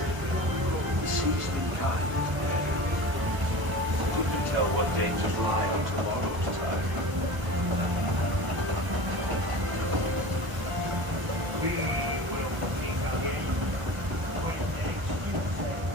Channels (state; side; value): late; left; 1.2 ms